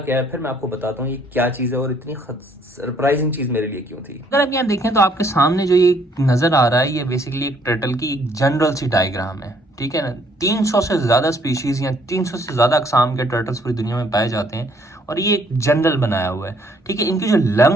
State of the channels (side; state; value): both; normal; correlation 0.65